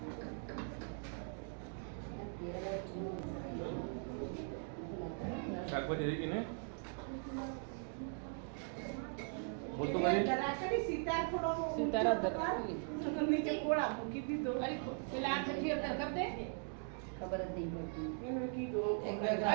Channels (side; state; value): left; silent; 51 dB below the other